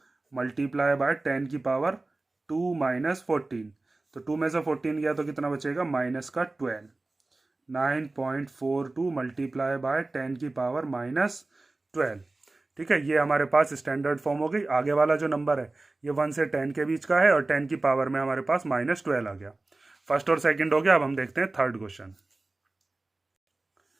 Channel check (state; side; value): quieter; left; 3.1 dB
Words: मल्टीप्लाई बाय 10 की पावर 2 -14। तो 2 में से 14 गया तो कितना बचेगा, माइनस का 12। 9.42 मल्टीप्लाई बाय 10 की पावर -12। ठीक है, ये हमारे पास स्टैंडर्ड फॉर्म हो गई। आगे वाला जो नंबर है ये 1 से 10 के बीच का है और 10 की पावर में हमारे पास -12 आ गया। फर्स्ट और सेकंड हो गया। अब हम देखते हैं थर्ड क्वेश्चन।